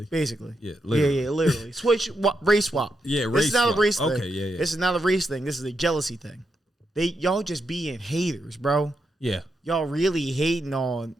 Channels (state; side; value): normal; both; correlation 0.83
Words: Basically. Yeah, literally. Yeah, literally. Switch, race swap. Yeah, race This is not swap. a race thing. Okay, yeah. This is not a race thing. This is a jealousy thing. Y'all just being haters, bro. Yeah. Y'all really hating on